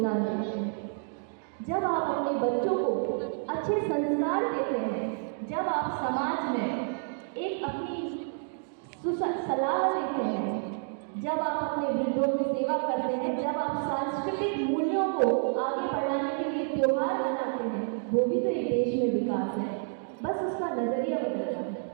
देते हैं। जब आप अपने बच्चों को अच्छे संस्कार देते हैं, जब आप समाज में एक अपनी सलाह देते हैं, जब आप अपने वृद्धों की सेवा करते हैं, जब आप सांस्कृतिक मूल्यों को आगे बढ़ाने के लिए त्योहार मनाते हैं, वो भी तो एक देश में विकास है। बस उसका नजरिया बदलना है।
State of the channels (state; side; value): silent; left; 58 dB below the other